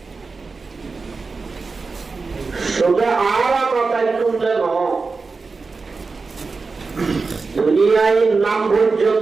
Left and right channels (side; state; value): left; quieter; 4.3 dB